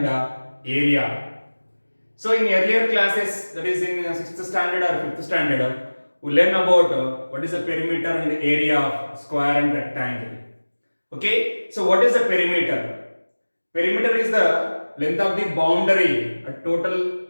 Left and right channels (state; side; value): inverted; both; correlation -1.00